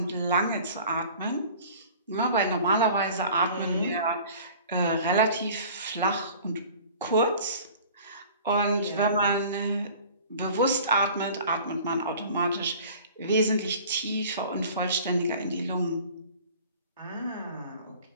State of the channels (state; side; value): inverted; both; correlation -0.46